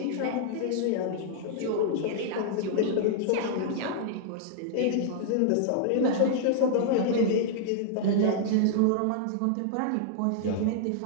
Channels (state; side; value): different; both; correlation -0.01